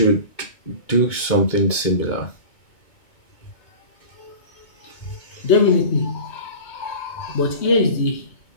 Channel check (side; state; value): right; late; 2.2 ms